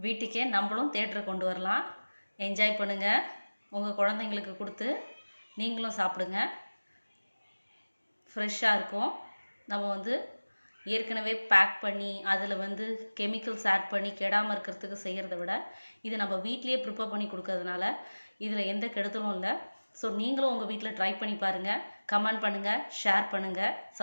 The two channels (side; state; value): both; inverted; correlation -1.00